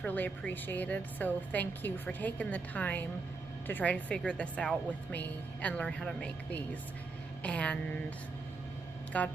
really appreciated. So thank you for taking the time to try to figure this out with me and learn how to make these. And God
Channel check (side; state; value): left; quieter; 3.9 dB